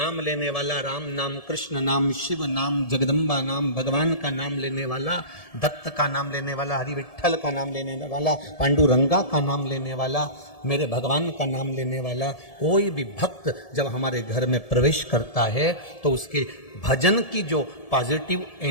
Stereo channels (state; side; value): late; right; 1.7 ms